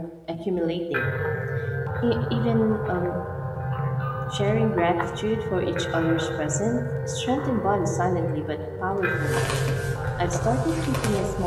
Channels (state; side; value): identical; both; correlation 1.00